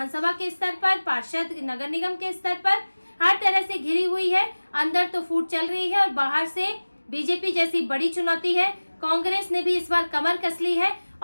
के स्तर पर, पार्षद, नगर निगम के स्तर पर हर तरह से घिरी हुई है। अंदर तो फूट चल रही है और बाहर से बीजेपी जैसी बड़ी चुनौती है। कांग्रेस ने भी इस बार कमर कस ली है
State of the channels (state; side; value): inverted; both; correlation -1.00